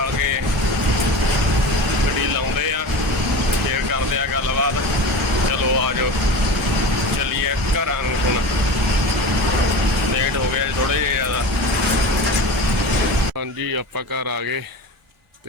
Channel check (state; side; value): normal; both; correlation 0.31